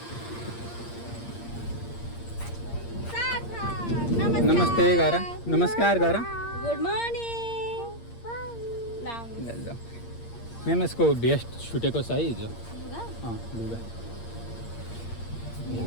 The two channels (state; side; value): late; right; 8.6 ms